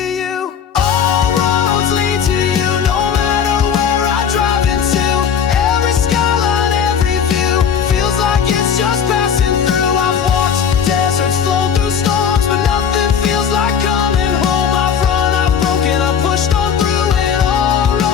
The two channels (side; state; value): right; quieter; 7.5 dB